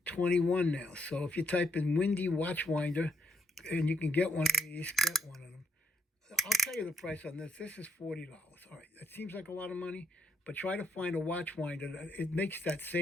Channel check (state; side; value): normal; both; correlation 0.74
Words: now, so if you type in Windy watch winder, and you can get one of these, get one of them. I'll tell you the price on this. This is $40. All right, that seems like a lot of money, but try to find a watch winder that it makes that